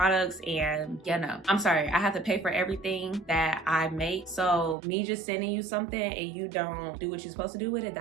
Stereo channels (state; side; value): drops out; left; at 4.8 s